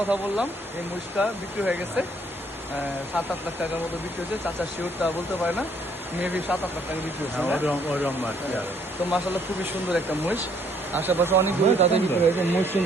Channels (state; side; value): normal; both; correlation 0.66